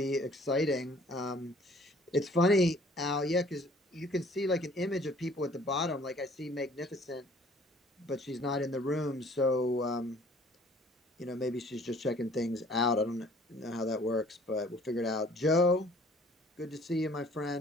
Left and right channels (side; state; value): both; normal; correlation 0.55